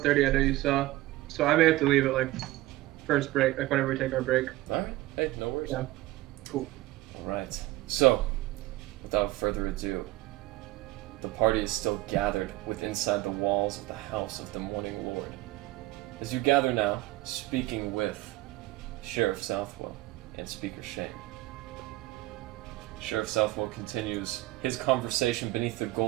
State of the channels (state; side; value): quieter; left; 17.9 dB